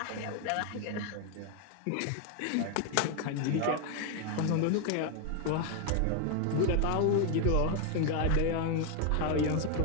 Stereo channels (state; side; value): different; both; correlation 0.01